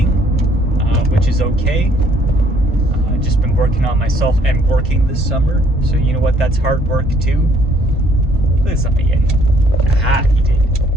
which is okay. Just been working on myself and working this summer, so you know what? That's hard work too. Look something in. Ah, he did.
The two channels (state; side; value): normal; both; correlation 0.64